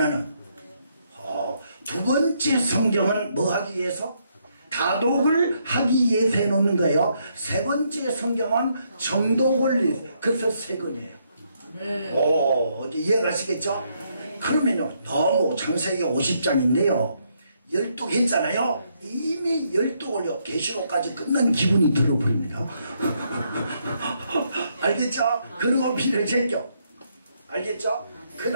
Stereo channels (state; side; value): inverted; both; correlation -0.75